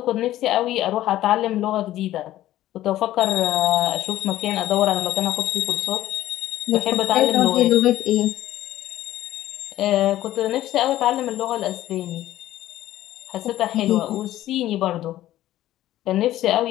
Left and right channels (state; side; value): quieter; right; 14.2 dB